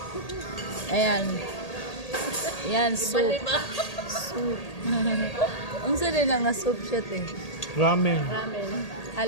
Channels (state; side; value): late; right; 1.8 ms